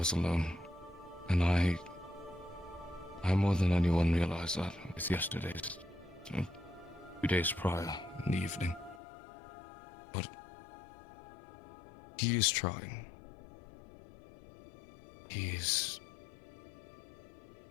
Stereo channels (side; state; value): right; drops out; at 9.0 s